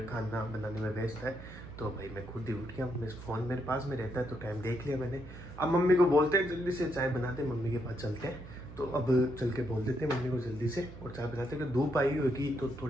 खाना बनाने में व्यस्त है। तो भाई मैं खुद ही उठ गया। मेरे फ़ोन मेरे पास में रहता है तो टाइम देख लिया मैंने। अब मम्मी को बोलते हैं जल्दी से चाय बनाते, मम्मी के पास चलते हैं। तो अब चल के बोल देते हैं मम्मी को जल्दी से और चाय बनाते हैं। धूप आई होगी तो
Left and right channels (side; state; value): right; noise; hum, 14 dB below the sound